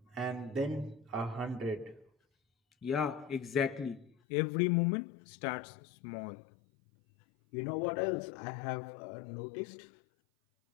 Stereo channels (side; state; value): right; drops out; at 4.2 s